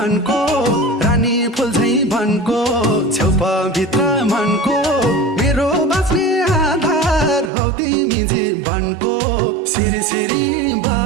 रानी फुल झैं वनको छेउपा भित्र मनको मेरो बाँच्ने आधार हौ तिमी जीवनको सिरी सिरी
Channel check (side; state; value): left; drops out; at 7.5 s